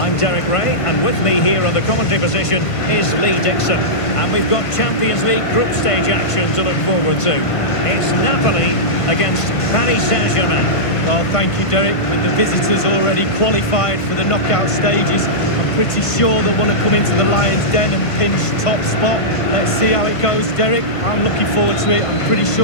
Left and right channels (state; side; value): late; right; 1.5 ms